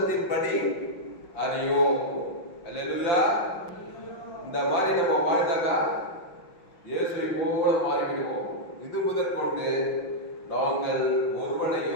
அறியோம். அல்லேலூயா. இந்த மாதிரி நம்ம வாழ்ந்தாக்கா இயேசுவை போல மாறிவிடுவோம். இது முதல் கொண்டு நாங்கள்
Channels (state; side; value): late; right; 5.8 ms